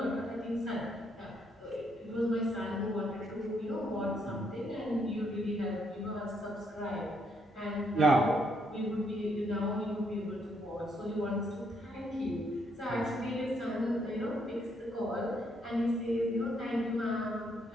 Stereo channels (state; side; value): normal; both; correlation 0.73